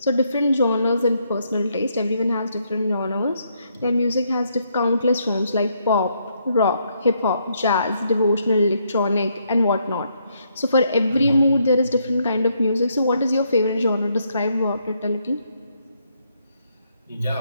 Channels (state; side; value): inverted; both; correlation -0.75